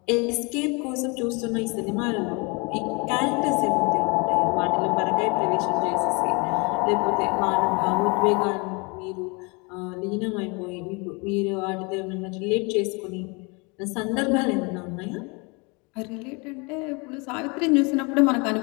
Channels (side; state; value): right; quieter; 29.8 dB